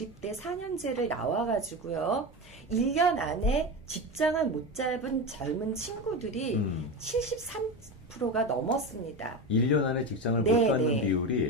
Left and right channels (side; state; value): both; normal; correlation 0.21